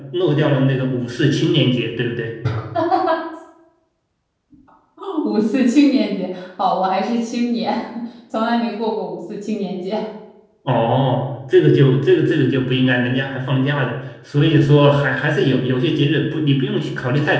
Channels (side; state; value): both; identical; correlation 1.00